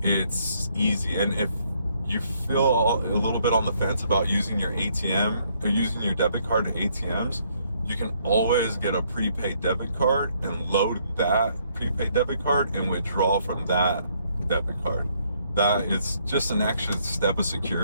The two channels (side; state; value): both; inverted; correlation -0.69